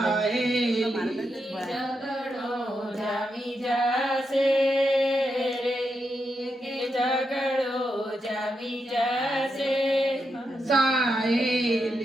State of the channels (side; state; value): both; normal; correlation 0.84